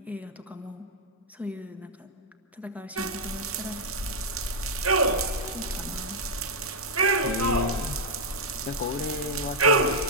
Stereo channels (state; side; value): normal; both; correlation -0.03